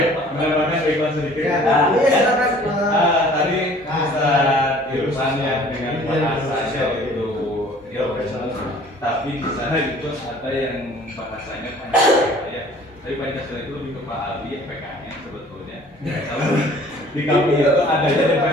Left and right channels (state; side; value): normal; both; correlation 0.52